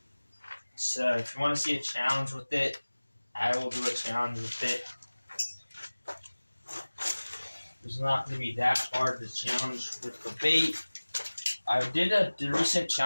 So if you want to see a challenge with it, I will do a challenge with it. It's not going to be that hard to challenge with the bait. I did a recent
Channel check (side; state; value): both; inverted; correlation -1.00